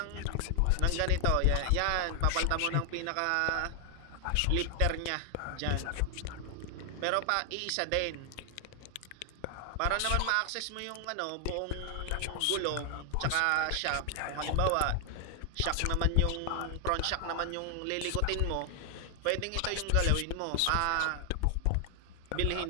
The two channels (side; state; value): both; different; correlation 0.00